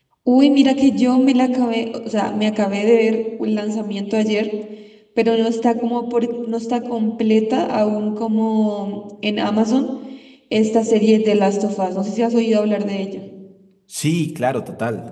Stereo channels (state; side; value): identical; both; correlation 1.00